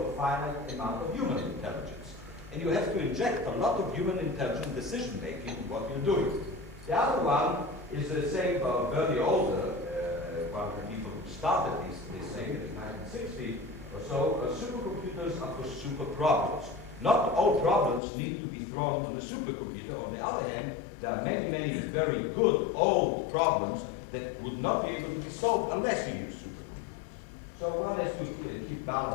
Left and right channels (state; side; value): drops out; right; at 18.0 s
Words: a finite amount of human intelligence. And you have to inject a lot of human intelligence decision-making in what you're doing. The other one is the same Bernie Older, one of the people who started this thing in 1960, so supercomputers are for super problems. Not all problems need to be thrown on the supercomputer. On the other hand, there are many, many very good old problems that would not be able to be solved unless you use supercomputers. So one has to keep